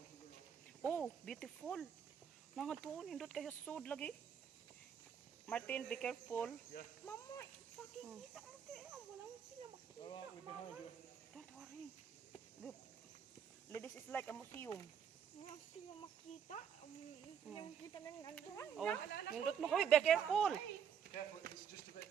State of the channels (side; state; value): left; quieter; 7.9 dB